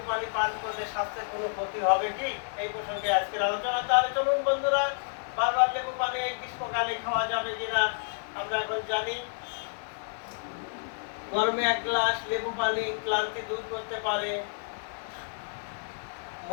পানি পান করলে স্বাস্থ্যের কোনো ক্ষতি হবে কি? এই প্রসঙ্গে আজকের আলোচনা। তাহলে চলুন বন্ধুরা, বারবার লেবু পানি এই গ্রীষ্মকালে খাওয়া যাবে কিনা আমরা এখন জানি। গরমে 1 গ্লাস লেবু পানি ক্লান্তি দূর করতে পারে,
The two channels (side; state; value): right; silent; digital silence